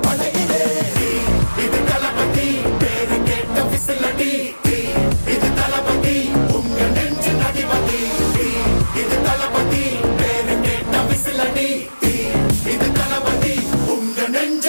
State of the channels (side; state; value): both; inverted; correlation -1.00